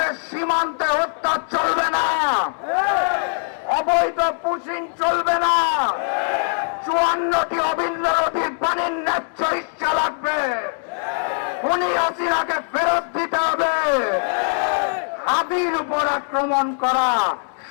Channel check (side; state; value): right; silent; digital silence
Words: সীমান্তে হত্যা চলবে না, অবৈধ পুশিং চলবে না, 54টি অভিন্ন নদীর পানির ন্যায্য ইচ্ছা লাগবে, খুনি হাসিনাকে ফেরত দিতে হবে। হাদির উপর আক্রমণ করা